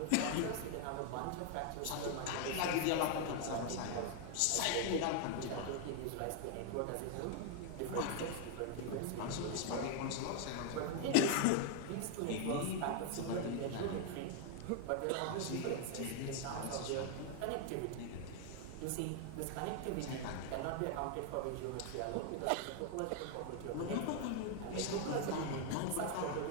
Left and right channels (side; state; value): both; different; correlation 0.00